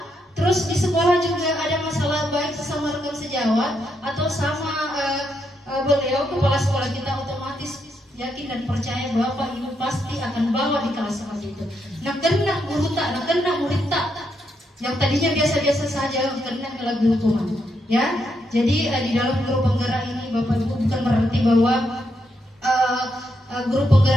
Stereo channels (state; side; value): normal; both; correlation 0.79